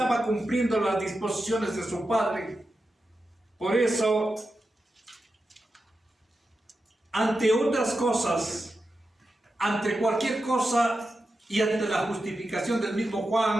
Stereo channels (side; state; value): both; normal; correlation 0.90